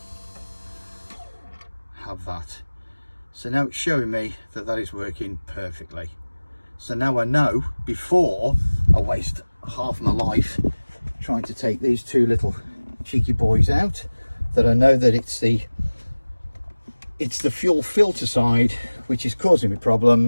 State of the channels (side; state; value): both; inverted; correlation -1.00